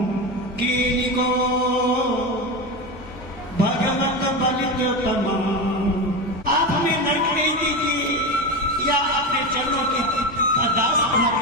कीनी को भगवत बलित तमाम। आप हमें नरक नहीं दीजिए या अपने चरणों के दास बना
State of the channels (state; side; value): normal; both; correlation 0.19